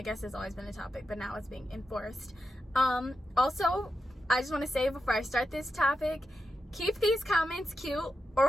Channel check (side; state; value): both; normal; correlation 0.88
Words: guess it's always been a topic, but now it's being enforced. Also, I just want to say before I start this topic, keep these comments cute or